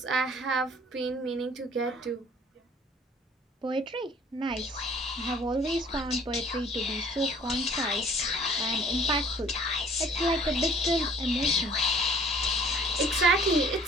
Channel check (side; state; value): both; normal; correlation 0.54